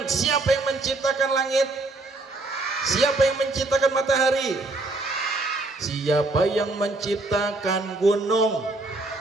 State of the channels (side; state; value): left; quieter; 3.0 dB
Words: Siapa yang menciptakan langit? Siapa yang menciptakan matahari? Siapa yang menciptakan gunung?